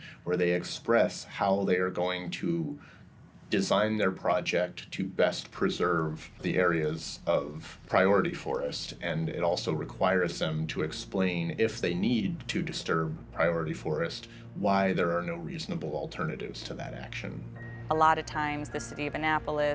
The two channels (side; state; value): both; identical; correlation 1.00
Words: where they express how they are going to design their project to best preserve the areas of priority forest. And it also requires them to explain, if they need to disturb priority forest, why there are no reasonable alternatives to that action. A lot of times the city of